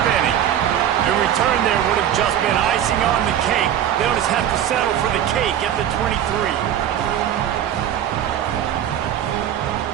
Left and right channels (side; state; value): left; quieter; 10.4 dB